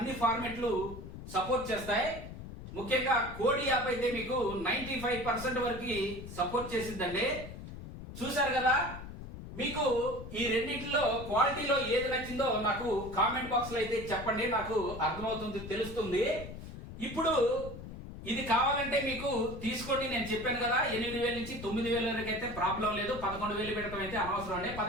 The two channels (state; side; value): noise; left; rumble, 11 dB below the sound